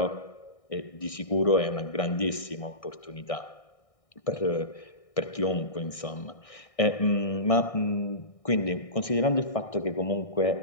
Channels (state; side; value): late; right; 1.6 ms